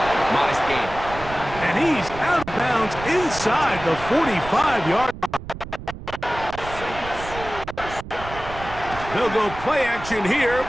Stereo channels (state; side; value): noise; right; rumble, 12 dB below the sound